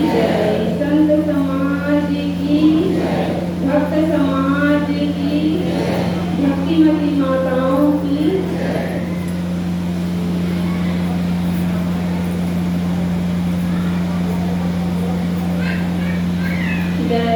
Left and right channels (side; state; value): both; identical; correlation 1.00